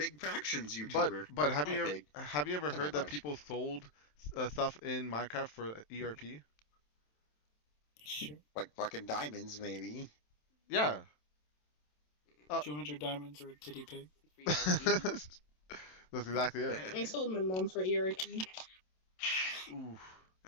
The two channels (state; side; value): late; right; 27 ms